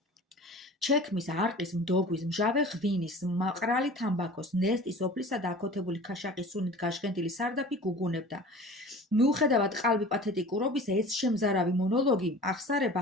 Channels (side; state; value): both; normal; correlation 0.40